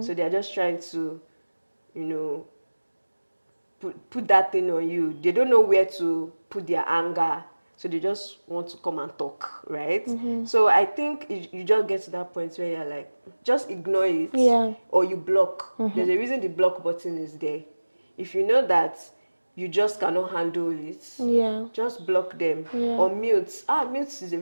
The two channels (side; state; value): both; inverted; correlation -1.00